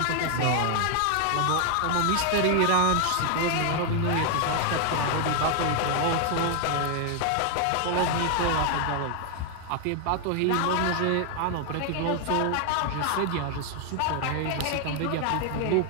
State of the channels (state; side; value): different; both; correlation 0.00